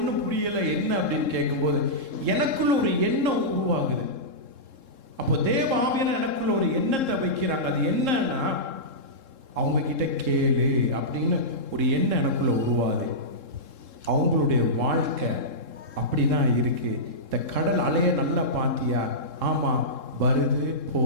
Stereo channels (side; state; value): left; late; 3.7 ms